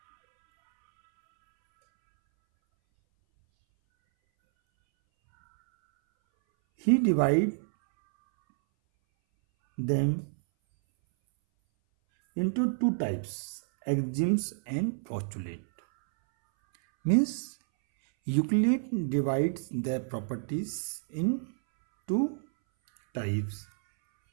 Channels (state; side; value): silent; left; 59 dB below the other